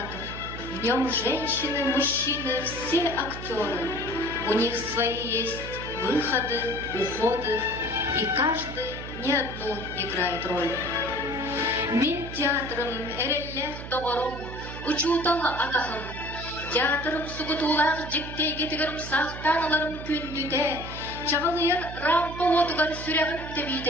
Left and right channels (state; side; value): noise; right; hum, 10 dB below the sound